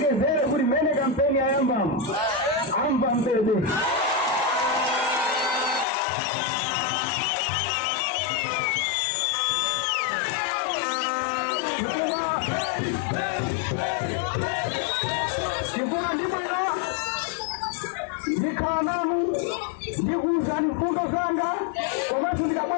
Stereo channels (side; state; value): right; drops out; at 5.9 s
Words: kuri mene kampeni ya amba mbebe kikuwa ndibwera ndikananu ndikuza mfundo zanga kwamatu